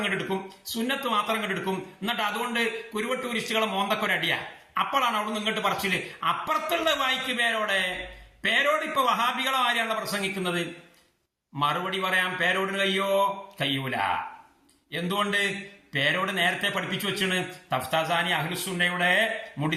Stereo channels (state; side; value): identical; both; correlation 1.00